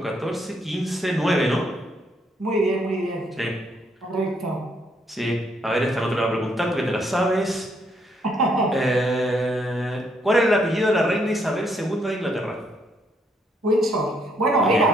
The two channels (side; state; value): both; normal; correlation 0.72